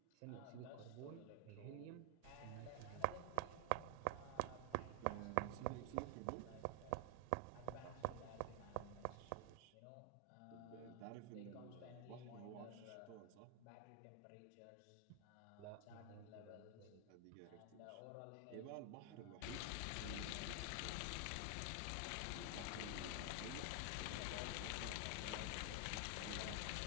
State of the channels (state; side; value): different; both; correlation 0.00